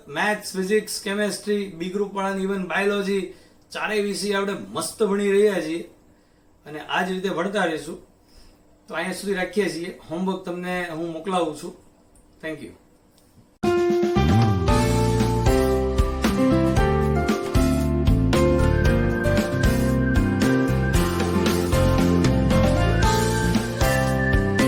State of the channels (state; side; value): identical; both; correlation 1.00